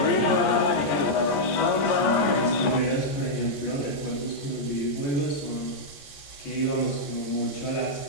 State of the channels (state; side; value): late; right; 14 ms